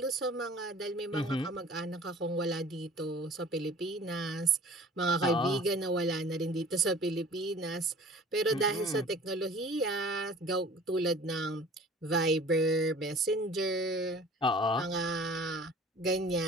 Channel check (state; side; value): normal; both; correlation 0.46